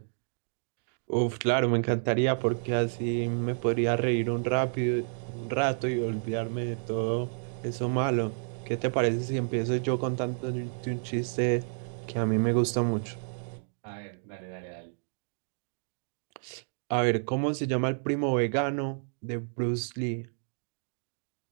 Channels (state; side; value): silent; left; digital silence